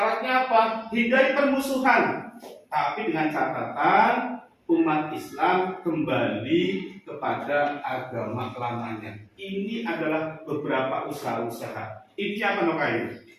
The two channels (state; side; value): identical; both; correlation 1.00